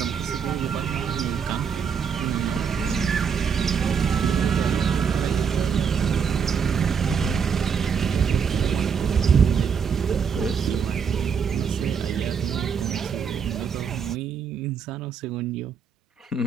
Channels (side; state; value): left; quieter; 6.6 dB